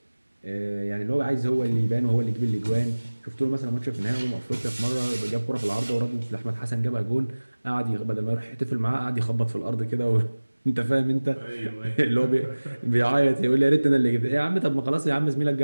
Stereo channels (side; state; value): both; inverted; correlation -1.00